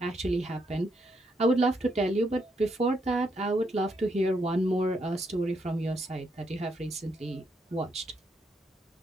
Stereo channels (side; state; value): both; normal; correlation 0.77